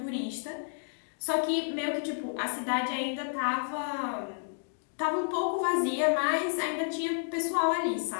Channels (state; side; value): silent; right; digital silence